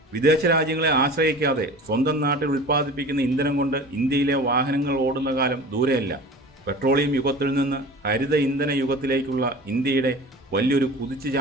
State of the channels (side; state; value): both; normal; correlation 0.39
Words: വിദേശ രാജ്യങ്ങളെ ആശ്രയിക്കാതെ സ്വന്തം നാട്ടിൽ ഉൽപ്പാദിപ്പിക്കുന്ന ഇന്ധനം കൊണ്ട് ഇന്ത്യയിലെ വാഹനങ്ങൾ ഓടുന്ന കാലം ദൂരെയല്ല. പെട്രോളിയം യുഗത്തിൽ നിന്ന് ഹരിത ഇന്ധന യുഗത്തിലേക്കുള്ള ഇന്ത്യയുടെ വലിയൊരു